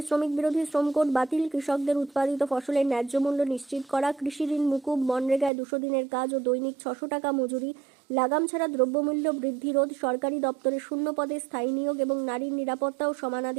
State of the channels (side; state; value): left; drops out; at 5.5 s